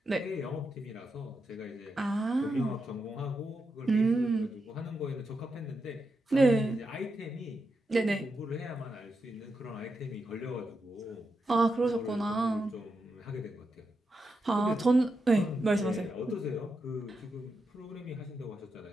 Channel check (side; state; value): both; normal; correlation 0.85